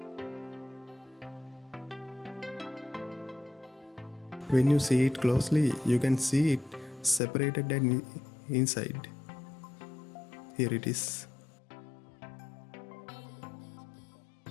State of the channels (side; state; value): right; drops out; at 7.2 s